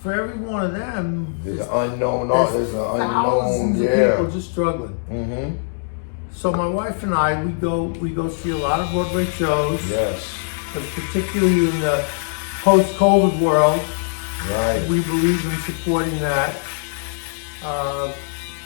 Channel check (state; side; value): silent; right; digital silence